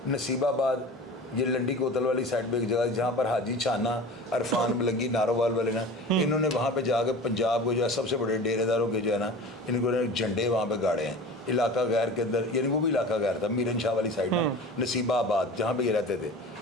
नसीबाबाद, ये लंडी कोतल वाली साइड पे एक जगह जहाँ पर हाजी छाना, अरफान मलंगी, नारोवाल वाले ना, इन्होंने वहाँ पे जाकर पंजाब को जो है सबसे बड़े डेरेदारों के जो है ना, इनको झंडे वहाँ पे गाड़े हैं इलाका गैर के अंदर। यानी वो भी इलाका गैर था, मीरन शाह वाली साइड में, नसीबाबाद जहाँ पे ये रहते थे।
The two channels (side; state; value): both; normal; correlation 0.36